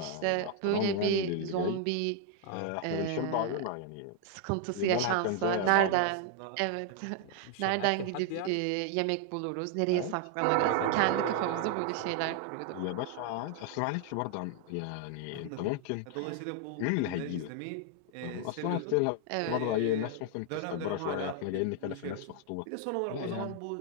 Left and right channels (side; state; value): both; different; correlation 0.00